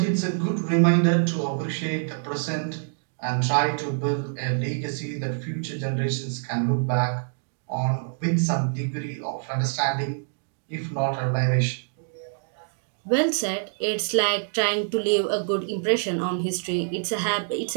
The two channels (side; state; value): left; silent; digital silence